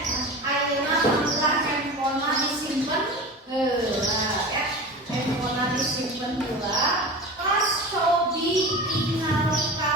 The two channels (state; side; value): normal; both; correlation 0.32